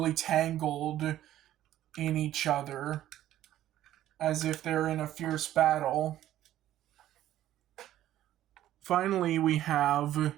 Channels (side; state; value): left; quieter; 13.0 dB